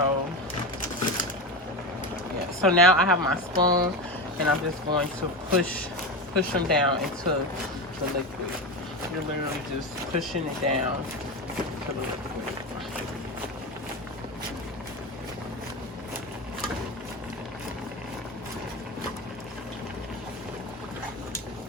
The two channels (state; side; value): normal; both; correlation 0.21